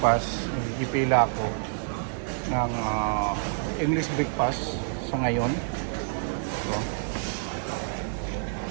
Nagpila ako ng English breakfast sa ngayon. So,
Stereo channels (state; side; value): silent; left; digital silence